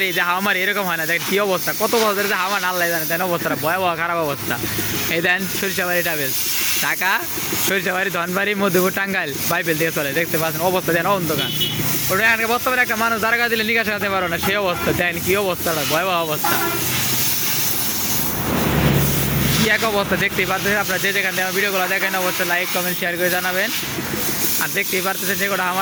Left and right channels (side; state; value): both; identical; correlation 1.00